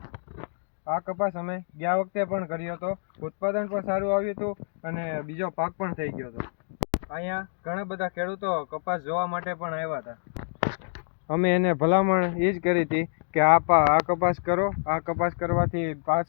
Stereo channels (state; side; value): silent; right; digital silence